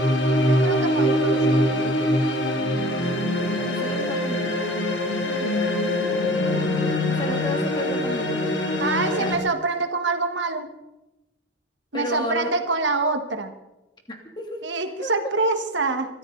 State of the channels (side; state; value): both; normal; correlation 0.31